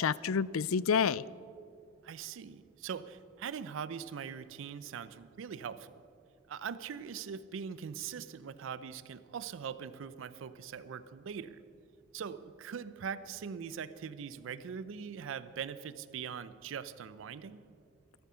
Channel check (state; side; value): normal; both; correlation -0.06